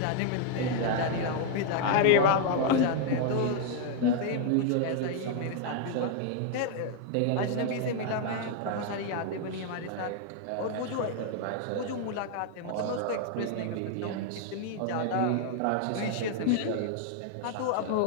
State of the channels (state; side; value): different; both; correlation 0.00